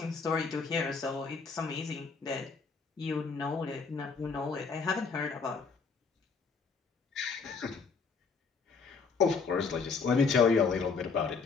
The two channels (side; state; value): right; quieter; 5.0 dB